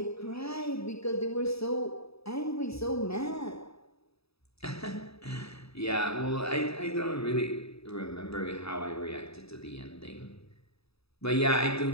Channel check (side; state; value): right; late; 0.77 ms